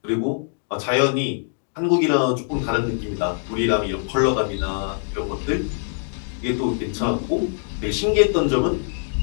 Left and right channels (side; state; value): right; silent; 63 dB below the other